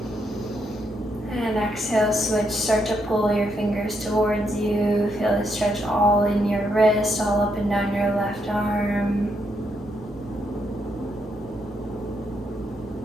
And exhale, switch, start to pull your fingers towards you. Feel the stretch all in your wrist, all up and down your left arm.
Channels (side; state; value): both; normal; correlation 0.78